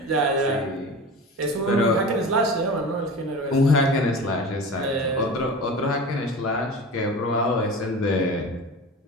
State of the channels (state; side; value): normal; both; correlation 0.33